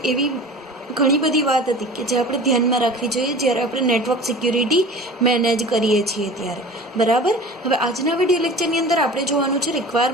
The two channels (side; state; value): both; normal; correlation 0.39